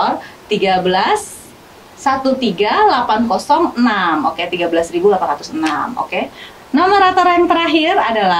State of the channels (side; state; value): both; identical; correlation 1.00